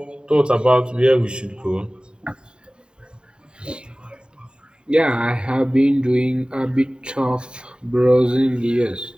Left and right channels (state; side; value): late; left; 0.049 ms